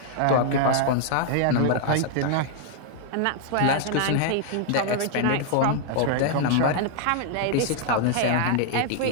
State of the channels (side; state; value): both; different; correlation -0.01